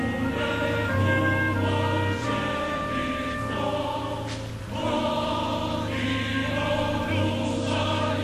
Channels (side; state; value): both; identical; correlation 1.00